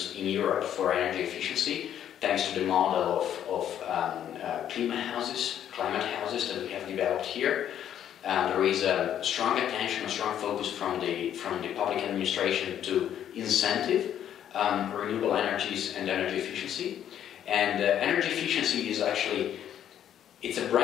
in Europe for energy efficiency, thanks to the model of climate houses that we have developed here. There is a strong attention, a strong focus from the public administration to incentive renewable energies and energy efficiency. And energy efficiency is actually, it's a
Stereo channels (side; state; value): right; quieter; 10.2 dB